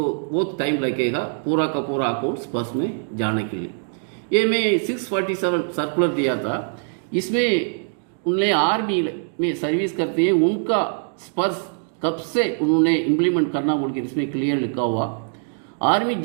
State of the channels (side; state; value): left; silent; digital silence